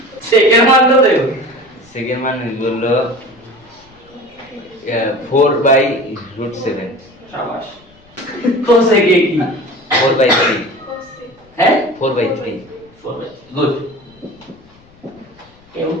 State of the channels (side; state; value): left; noise; rumble, 29 dB below the sound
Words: সেকেন্ড মান কত দেব সেকেন্ড মান হলো 4/√7 শাবাশ কোসে কি 4/3 হ্যাঁ 4/3 গুড কেউ